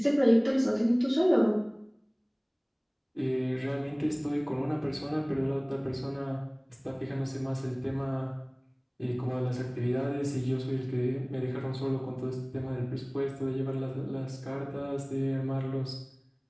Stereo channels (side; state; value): both; identical; correlation 1.00